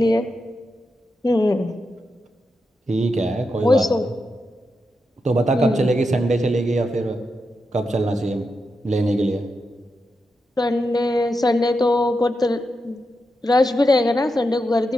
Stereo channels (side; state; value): both; normal; correlation 0.87